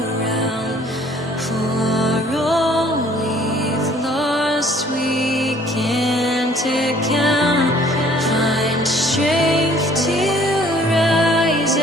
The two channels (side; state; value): both; normal; correlation 0.57